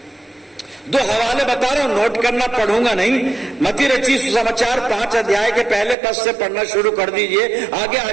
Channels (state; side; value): drops out; left; at 6.0 s